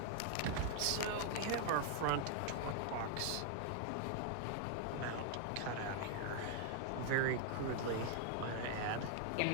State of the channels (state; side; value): different; both; correlation 0.00